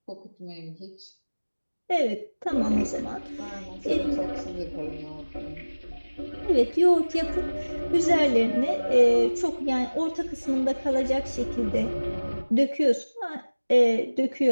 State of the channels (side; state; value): both; inverted; correlation -1.00